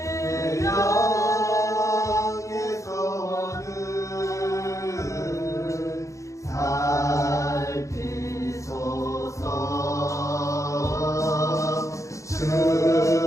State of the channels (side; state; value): right; late; 0.15 ms